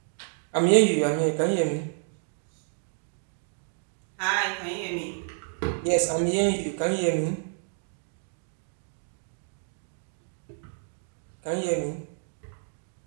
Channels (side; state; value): left; silent; digital silence